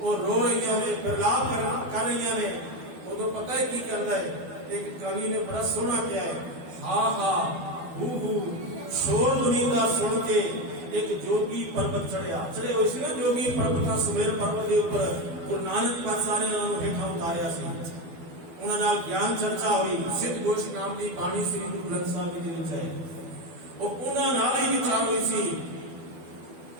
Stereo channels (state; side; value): late; left; 12 ms